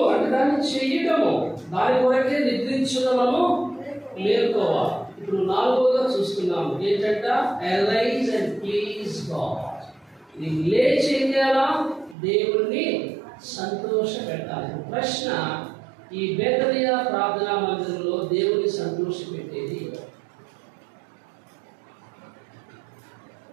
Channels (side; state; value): left; drops out; at 12.2 s